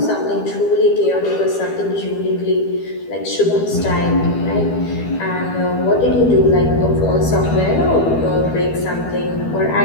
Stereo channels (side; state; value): right; late; 12 ms